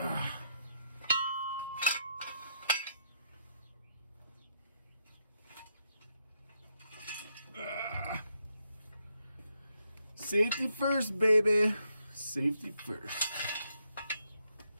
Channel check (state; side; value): inverted; both; correlation -0.78